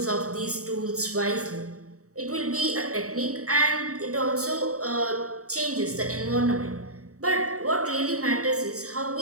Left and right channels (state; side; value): late; left; 0.65 ms